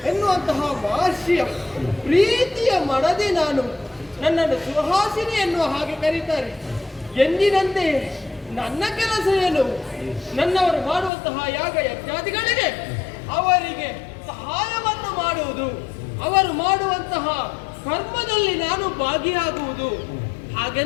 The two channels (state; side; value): drops out; right; at 11.1 s